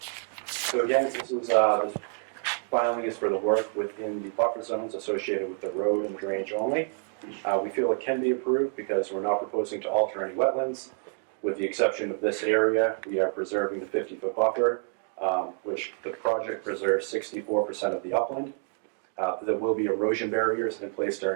So again, this filing is for the work within the buffer zones associated with the road and drainage only. We feel it can be approved because we're not proposing to alter any wetlands. With the exception of this area, we are preserving the 50-foot buffer, which the project preserves 64% of the upland. There will be erosion barriers in place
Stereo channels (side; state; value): left; silent; 55 dB below the other